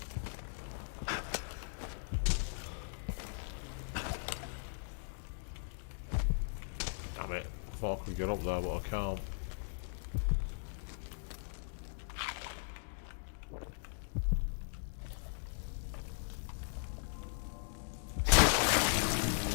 Damn it. I thought I could get up there, but I can't.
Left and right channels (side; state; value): right; silent; digital silence